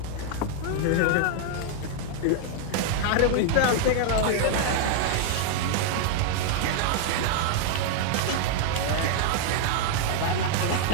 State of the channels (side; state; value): both; different; correlation 0.00